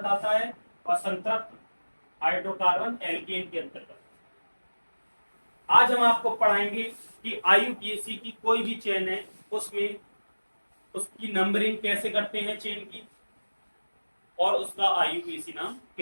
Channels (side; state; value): both; inverted; correlation -1.00